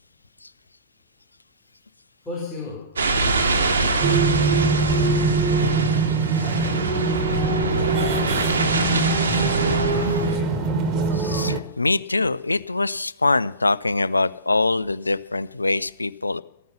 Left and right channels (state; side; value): inverted; both; correlation -0.33